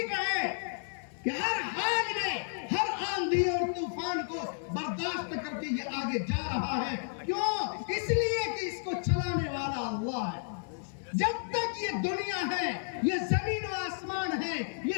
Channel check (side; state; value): right; silent; digital silence